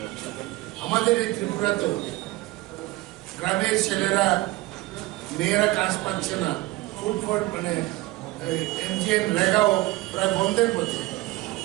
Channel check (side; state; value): left; quieter; 19.1 dB